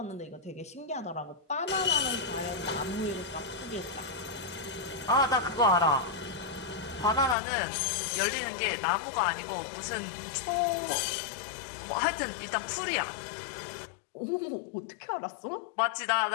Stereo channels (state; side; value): drops out; right; at 7.4 s